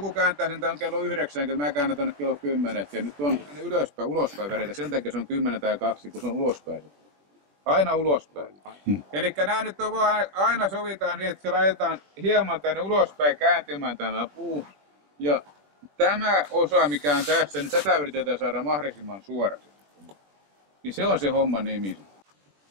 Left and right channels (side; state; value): left; late; 21 ms